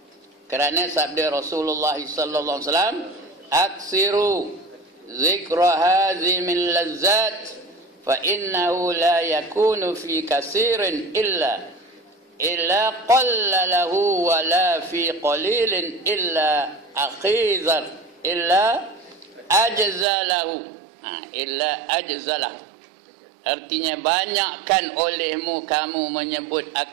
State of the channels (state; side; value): drops out; left; at 20.1 s